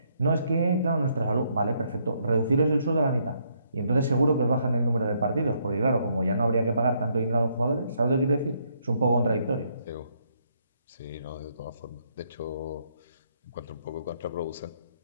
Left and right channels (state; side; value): inverted; both; correlation -0.72